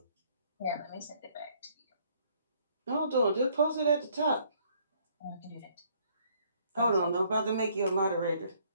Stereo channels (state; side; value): inverted; both; correlation -0.64